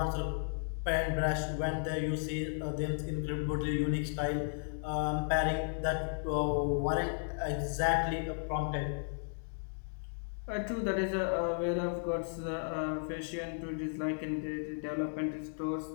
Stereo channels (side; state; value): right; silent; digital silence